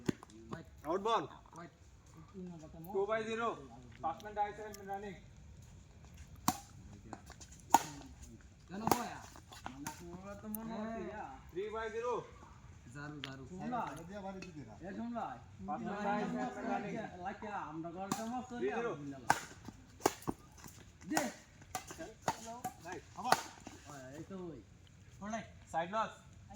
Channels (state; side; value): identical; both; correlation 1.00